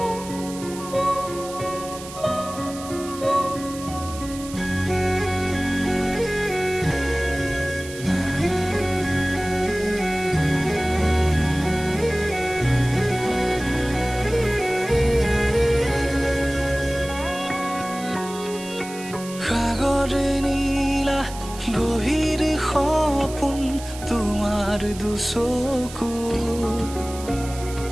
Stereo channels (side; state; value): right; noise; hiss, 14 dB below the sound